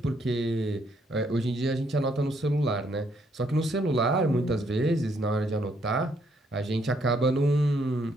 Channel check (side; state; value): both; normal; correlation 0.71